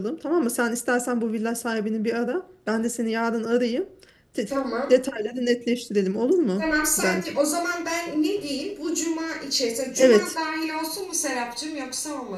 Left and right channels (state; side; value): identical; both; correlation 1.00